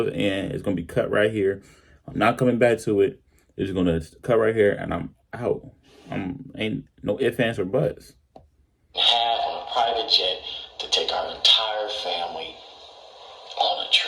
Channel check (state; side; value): identical; both; correlation 1.00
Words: and it's going to be cut right here. I'm not coming back to it. It's going to cut right here and I'm out. Ain't no ifs, ands, or buts. Have on a private jet to take our entire family on a